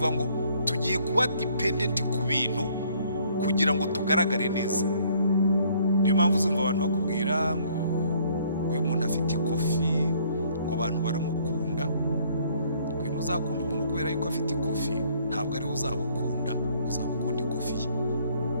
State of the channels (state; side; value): inverted; both; correlation -0.62